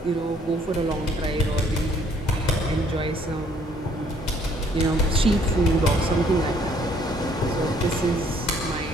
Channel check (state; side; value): normal; both; correlation 0.63